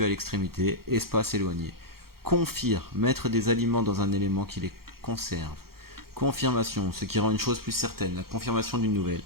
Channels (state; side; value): late; left; 0.94 ms